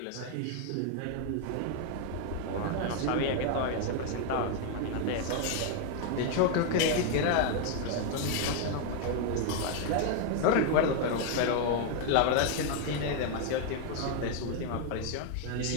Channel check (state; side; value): different; both; correlation 0.01